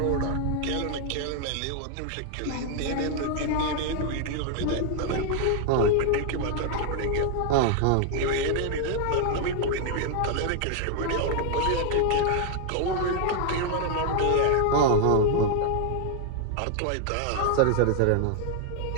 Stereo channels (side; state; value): both; different; correlation 0.00